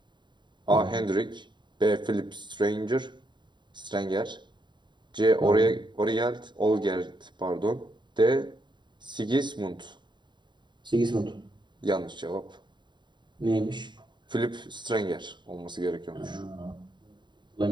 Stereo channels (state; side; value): late; left; 0.22 ms